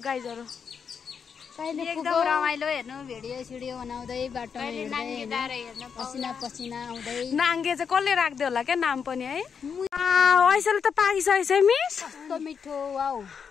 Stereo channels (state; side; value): quieter; right; 6.6 dB